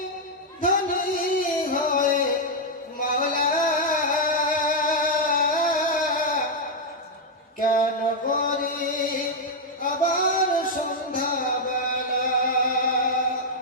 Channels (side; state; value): both; normal; correlation -0.01